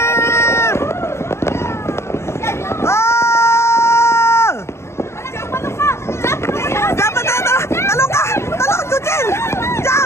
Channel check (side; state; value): right; late; 0.13 ms